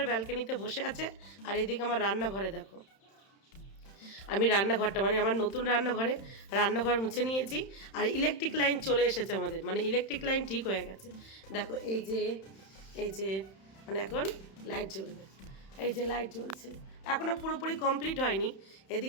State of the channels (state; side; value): late; right; 31 ms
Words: ব্যালকনিতে বসে আছে, আর এইদিকে আমার রান্নাঘরে দেখো। আমি রান্নাঘরটা, মানে আমার নতুন রান্নাঘর মুছে নিয়েছি। আর ইলেকট্রিক লাইন চলে এসেছে আমাদের, মানে ইলেকট্রিক লাইন ঠিক হয়ে গেছে। দেখো এই যে মানে এখন লাইট জ্বলবে। এই যে লাইট জ্বলছে, এখনও পুরোপুরি কমপ্লিট হয়নি।